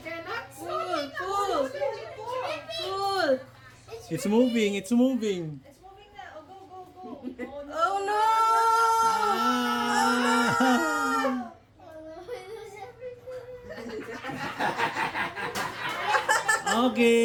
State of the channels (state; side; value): identical; both; correlation 1.00